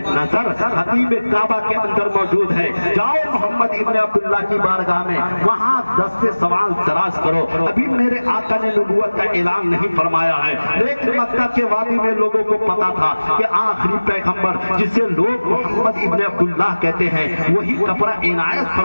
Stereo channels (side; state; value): both; inverted; correlation -1.00